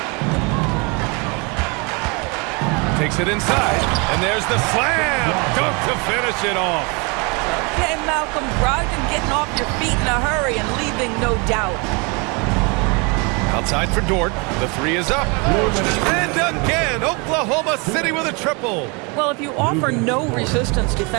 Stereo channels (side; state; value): left; quieter; 30.7 dB